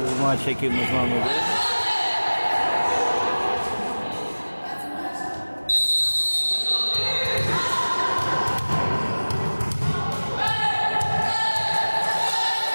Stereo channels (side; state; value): both; inverted; correlation -1.00